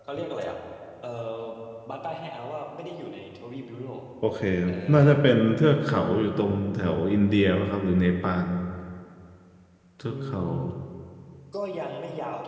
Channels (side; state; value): both; identical; correlation 1.00